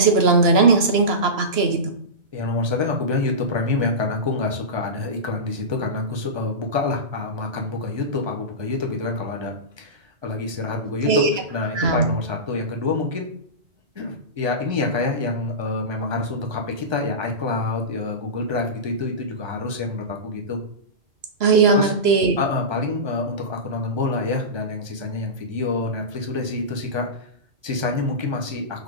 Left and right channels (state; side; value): late; left; 3.0 ms